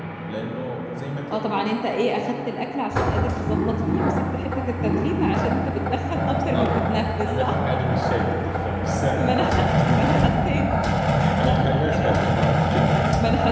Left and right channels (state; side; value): identical; both; correlation 1.00